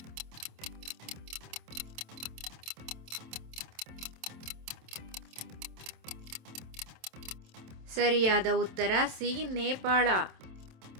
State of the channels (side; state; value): left; late; 27 ms